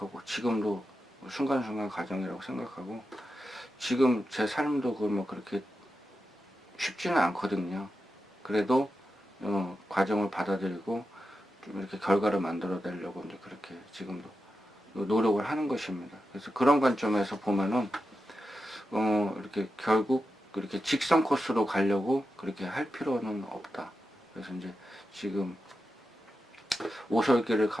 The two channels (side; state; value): both; normal; correlation 0.90